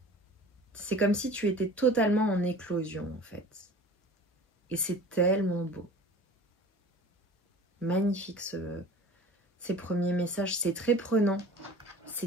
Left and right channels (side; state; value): both; normal; correlation 0.41